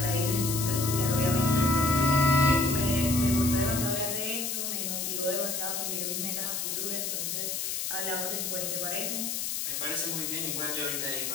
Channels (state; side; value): noise; left; hiss, 2 dB below the sound